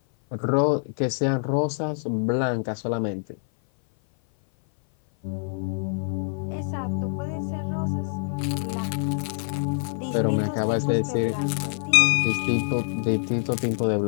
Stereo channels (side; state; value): right; silent; 57 dB below the other